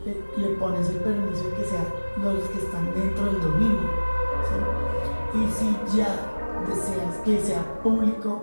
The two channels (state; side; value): inverted; both; correlation -1.00